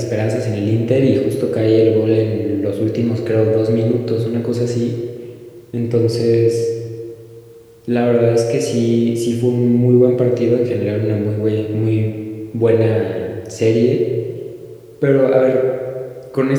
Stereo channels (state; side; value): identical; both; correlation 1.00